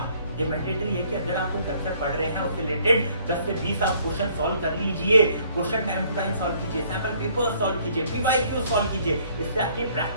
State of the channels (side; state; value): both; inverted; correlation -0.62